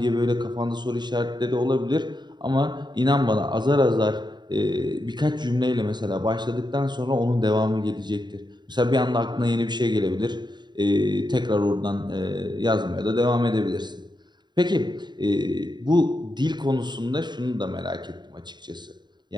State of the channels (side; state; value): left; late; 0.21 ms